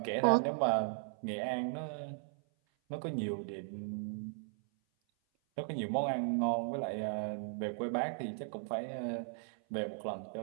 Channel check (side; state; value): left; silent; 53 dB below the other